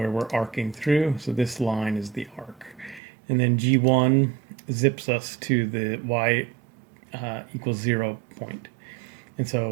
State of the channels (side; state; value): left; drops out; at 3.0 s